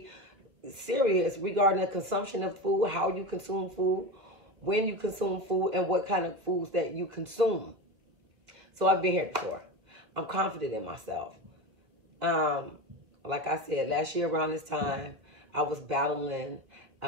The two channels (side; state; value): left; late; 2.1 ms